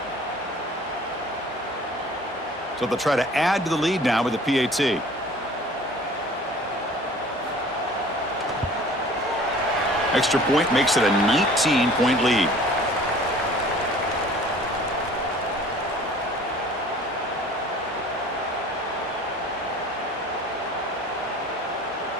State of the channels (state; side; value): normal; both; correlation 0.48